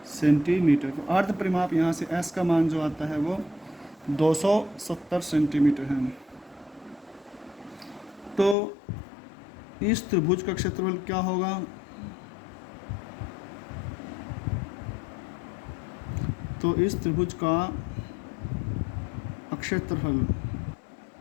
सेंटीमीटर। तो अर्ध परिमाप यहाँ से s का मान जो आता है वो 270 सेंटीमीटर है। तो इस त्रिभुज का क्षेत्रफल क्या होगा, तो इस त्रिभुज का क्षेत्रफल,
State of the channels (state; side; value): drops out; right; at 8.6 s